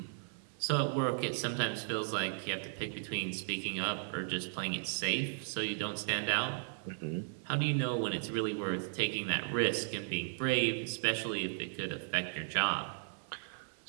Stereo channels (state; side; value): silent; left; 54 dB below the other